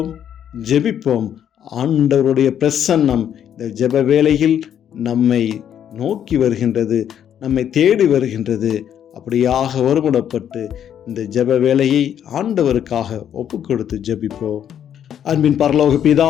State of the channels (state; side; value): quieter; right; 9.5 dB